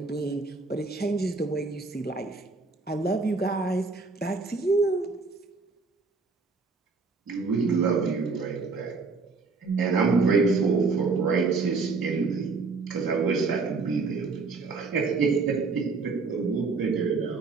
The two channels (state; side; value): quieter; left; 4.2 dB